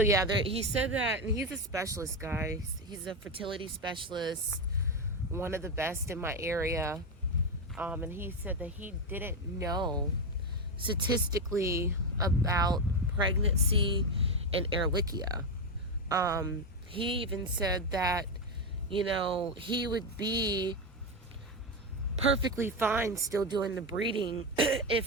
yeah, he said that, and he's a specialist, guys. He's a fertility specialist, one of the best in my area. And he said that he didn't know statistically about pregnancy and Ehrlichia. He even said that, you know, he would be perfectly fine still doing the breeding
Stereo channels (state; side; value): normal; both; correlation 0.10